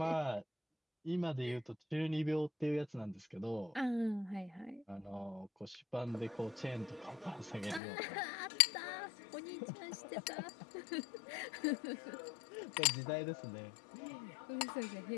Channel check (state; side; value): drops out; right; at 7.8 s